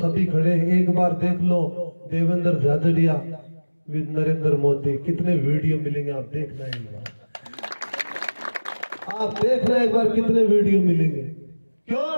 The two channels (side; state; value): both; inverted; correlation -1.00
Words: खड़े हैं। एक बार देख लो देवेंद्र झाझड़िया विद नरेंद्र मोदी, कितने वीडियो मिलेंगे आप देखना एक बार, आप देखना एक बार कितने वीडियो मिलेंगे। क्यों?